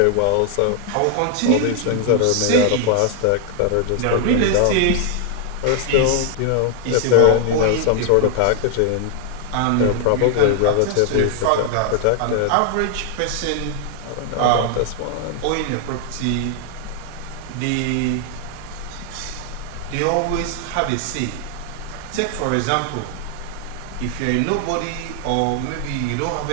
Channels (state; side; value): different; both; correlation 0.00